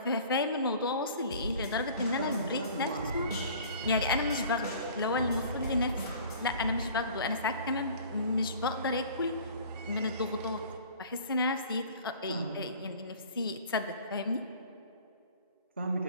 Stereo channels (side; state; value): both; inverted; correlation -0.47